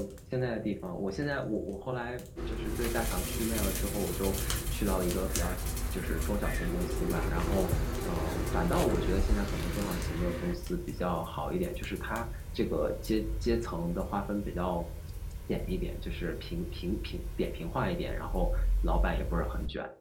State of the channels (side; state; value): both; identical; correlation 1.00